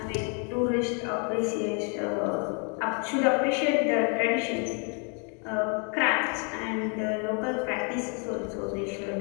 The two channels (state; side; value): quieter; right; 37.3 dB